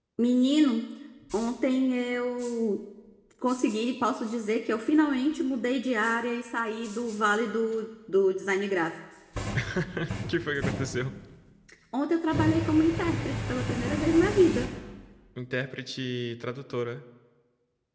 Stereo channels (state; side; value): identical; both; correlation 1.00